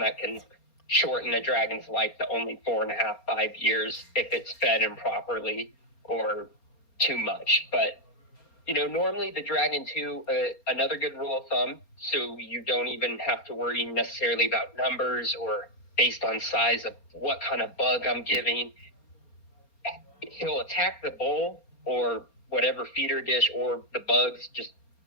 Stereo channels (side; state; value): right; late; 4.3 ms